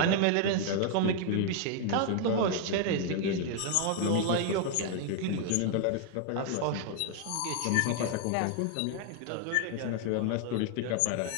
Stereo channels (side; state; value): both; different; correlation 0.00